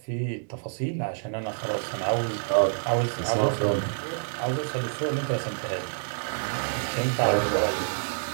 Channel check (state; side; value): silent; left; digital silence